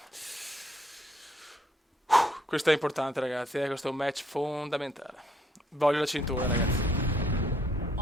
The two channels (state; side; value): normal; both; correlation 0.68